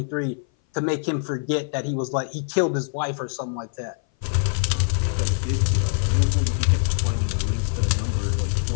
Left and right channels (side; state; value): right; silent; 58 dB below the other